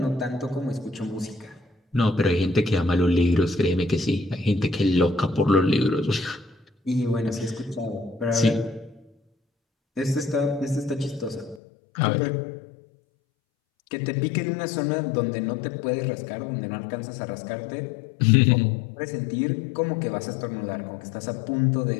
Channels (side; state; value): right; drops out; at 11.6 s